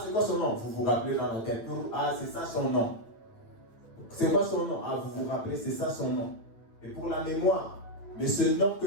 c'est quoi son nom? Vous vous rappelez dans la tête. Ah, c'est ça son nom. C'est quoi son nom? Ah, vous vous rappelez, c'est ça son nom. Et pour la mémoire. Mais ce nom que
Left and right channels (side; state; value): right; late; 8.8 ms